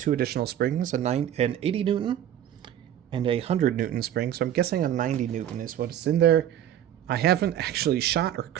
additional springs, an 80 Newton and a 100 Newton spring. So I'm guessing a 90 Newton is what's in there. I haven't actually shot or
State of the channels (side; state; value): left; quieter; 11.0 dB